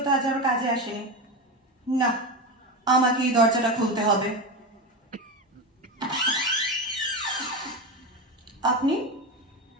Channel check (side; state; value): both; normal; correlation 0.19